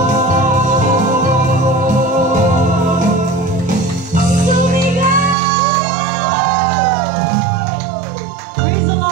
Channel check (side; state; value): left; drops out; at 5.4 s